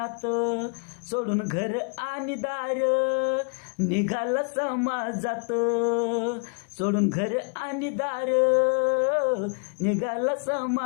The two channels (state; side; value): quieter; right; 37.6 dB